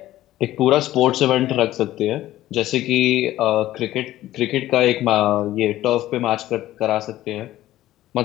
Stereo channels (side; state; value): right; quieter; 14.6 dB